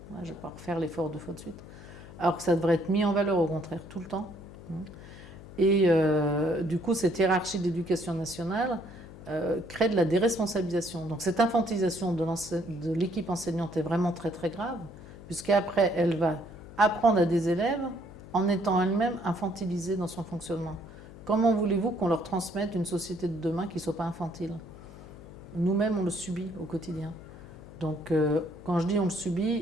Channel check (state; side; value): noise; left; hum, 16 dB below the sound